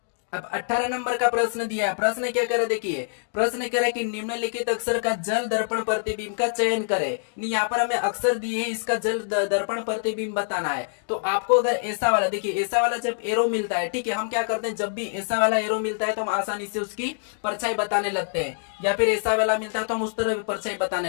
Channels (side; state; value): right; silent; digital silence